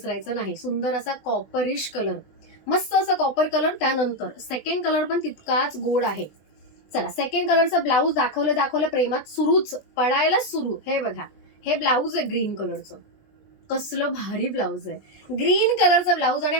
नाही. सुंदर असा कॉपरिश कलर, मस्त असा कॉपर कलर. त्यानंतर सेकंड कलर पण तितकाच गोड आहे. चला सेकंड कलरचा ब्लाऊज दाखवलं प्रेमात सुरूच पडायला सुरू. हे बघा, हे ब्लाऊज आहे ग्रीन कलरचं. कसलं भारी ब्लाऊज आहे. ग्रीन कलरचा ब्लाऊज आणि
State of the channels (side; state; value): right; late; 20 ms